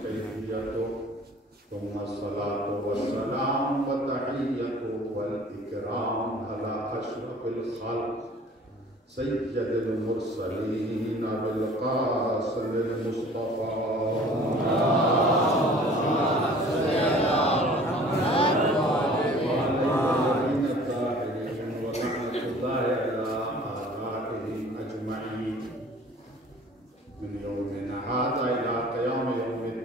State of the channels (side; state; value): both; normal; correlation 0.49